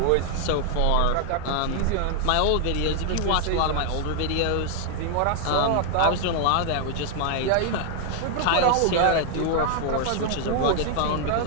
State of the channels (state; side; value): different; both; correlation 0.00